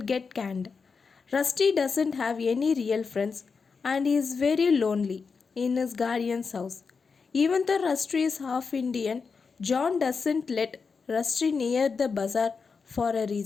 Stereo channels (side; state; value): right; quieter; 5.1 dB